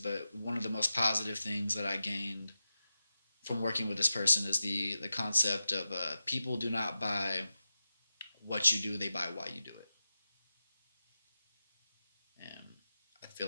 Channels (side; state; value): both; inverted; correlation -0.93